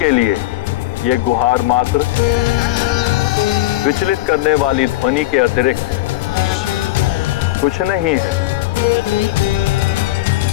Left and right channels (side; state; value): right; quieter; 16.4 dB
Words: लिए यह गुहार मात्र विचलित करने वाली ध्वनि के अतिरिक्त कुछ नहीं है।